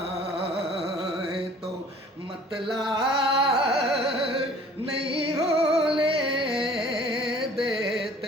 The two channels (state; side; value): normal; both; correlation 0.51